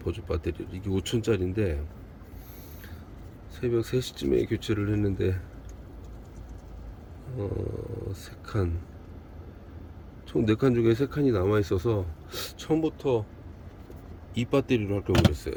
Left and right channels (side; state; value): both; identical; correlation 1.00